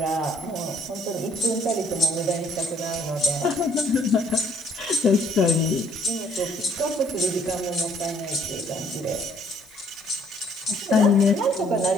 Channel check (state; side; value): noise; left; hiss, 27 dB below the sound